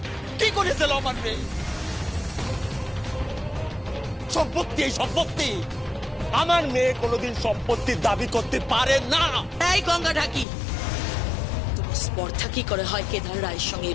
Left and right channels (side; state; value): right; drops out; at 10.5 s